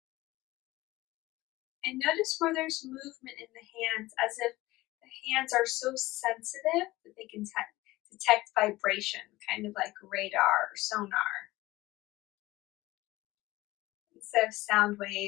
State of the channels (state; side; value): quieter; right; 18.6 dB